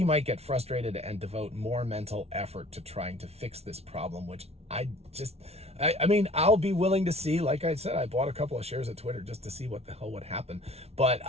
might get frustrated and devote more mental effort to trying to fix this problem, which I mean, I'll be willing to see. Like I said, I bought a couple of shares of Twitter just to see what the hell would happen. But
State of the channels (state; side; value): late; left; 0.31 ms